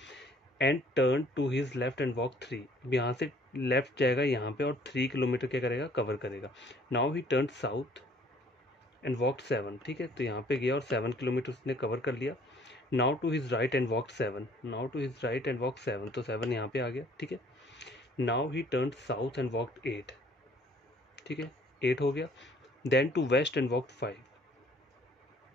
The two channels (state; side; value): normal; both; correlation 0.58